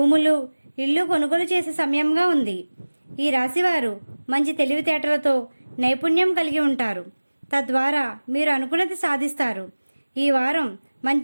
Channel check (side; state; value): both; inverted; correlation -1.00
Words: ఇల్లు కొనుగోలు చేసే సమయంగా ఉంది. ఈ రాశివారు మంచి తెలివితేటలతో నైపుణ్యం కలిగి ఉంటారు. తద్వారా మీరు అనుకున్నది సాధిస్తారు. ఈ వారం